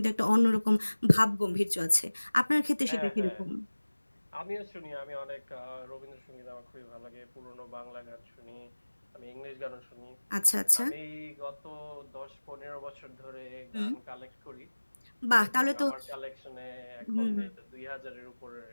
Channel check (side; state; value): both; inverted; correlation -1.00